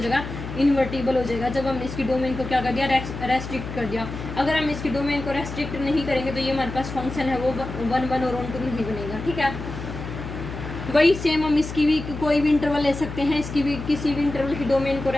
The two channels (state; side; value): noise; left; hum, 8 dB below the sound